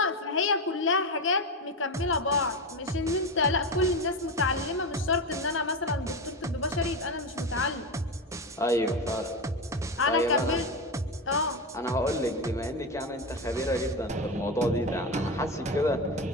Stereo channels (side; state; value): both; normal; correlation 0.17